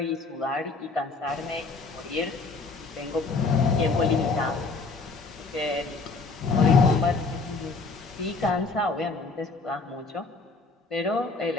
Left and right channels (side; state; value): right; quieter; 4.0 dB